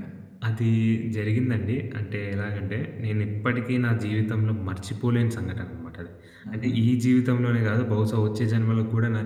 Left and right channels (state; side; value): identical; both; correlation 1.00